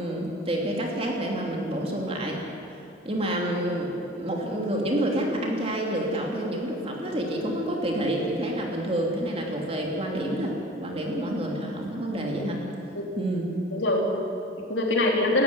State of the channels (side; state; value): both; normal; correlation 0.41